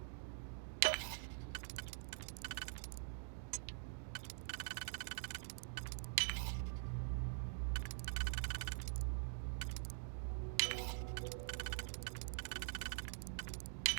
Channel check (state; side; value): silent; left; digital silence